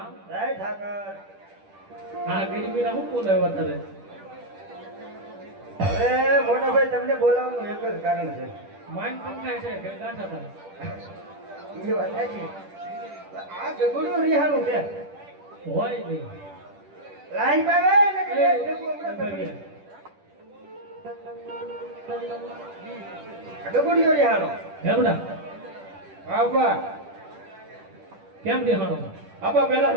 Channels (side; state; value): left; late; 10 ms